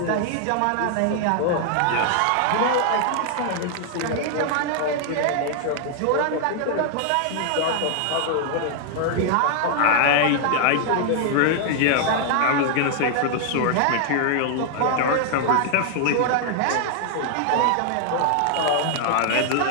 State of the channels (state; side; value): different; both; correlation 0.00